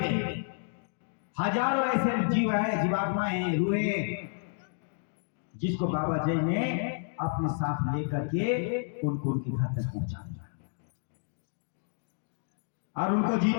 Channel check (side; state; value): right; silent; digital silence